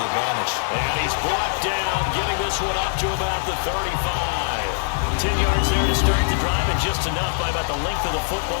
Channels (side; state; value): right; silent; digital silence